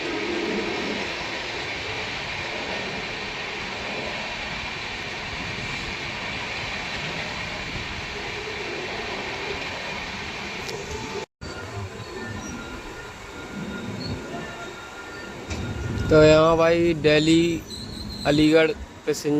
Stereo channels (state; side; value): identical; both; correlation 1.00